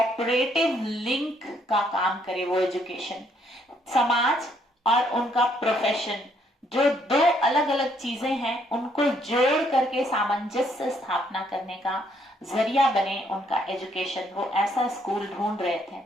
लिंक का काम करे। वो एजुकेशन समाज और उनका प्रोफेशन, जो दो अलग अलग चीजें हैं, उनको जोड़ करके सामंजस्य स्थापना करने का जरिया बने उनका एजुकेशन। वो ऐसा स्कूल ढूंढ रहे थे।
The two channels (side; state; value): both; normal; correlation 0.69